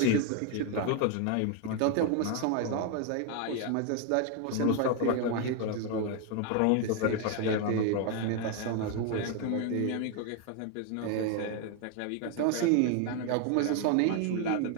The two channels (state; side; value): different; both; correlation 0.01